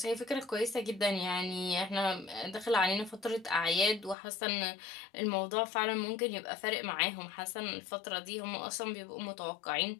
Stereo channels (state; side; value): drops out; right; at 4.2 s